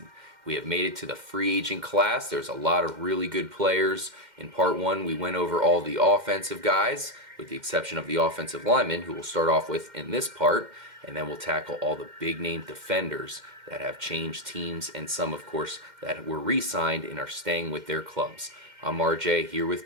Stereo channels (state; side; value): late; left; 2.1 ms